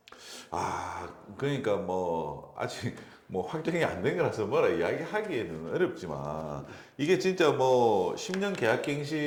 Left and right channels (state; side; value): identical; both; correlation 1.00